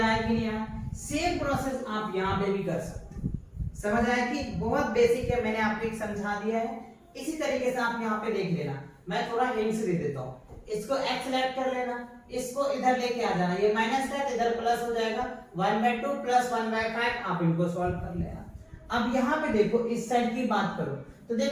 आया कि नहीं आया? सेम प्रोसेस आप यहाँ पे भी कर सकते हैं। समझ आया कि बहुत बेसिक है, मैंने आपको एक समझा दिया है। इसी तरीके से आप यहाँ पे देख लेना, मैं थोड़ा हिंट्स दे देता हूँ। इसको x लेट कर लेना, इसको इधर लेके आ जाना, ये माइनस है तो इधर प्लस हो जाएगा, 1/2 प्लस 1/5 आप इनको सॉल्व कर लेना। अब यहाँ पे देखो इस साइड की बात करो, तो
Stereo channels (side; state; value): both; identical; correlation 1.00